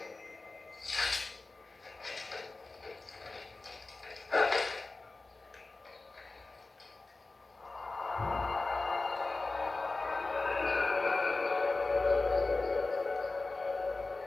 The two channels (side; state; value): right; quieter; 3.4 dB